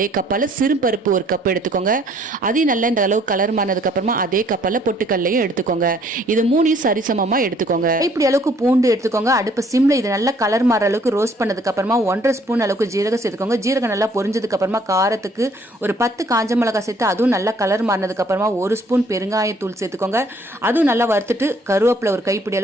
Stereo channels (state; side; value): normal; both; correlation 0.62